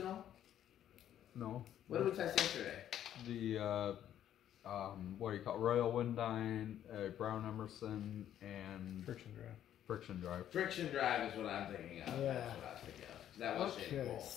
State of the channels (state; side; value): quieter; right; 10.9 dB